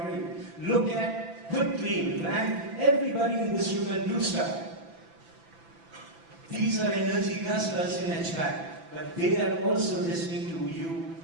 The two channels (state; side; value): late; left; 6.0 ms